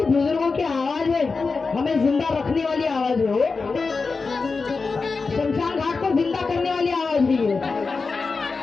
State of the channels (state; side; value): quieter; right; 4.4 dB